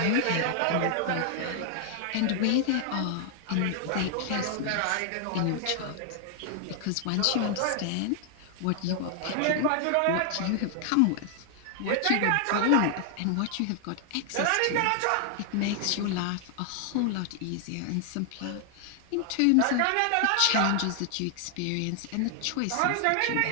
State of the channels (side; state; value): both; different; correlation 0.00